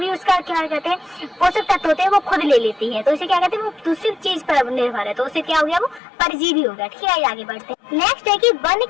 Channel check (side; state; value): right; drops out; at 6.0 s